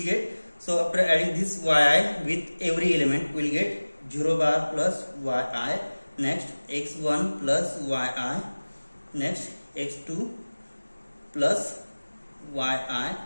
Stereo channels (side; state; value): both; inverted; correlation -1.00